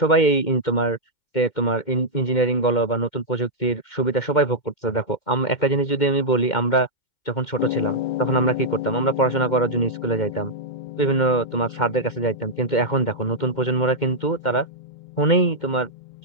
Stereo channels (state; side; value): late; right; 2.1 ms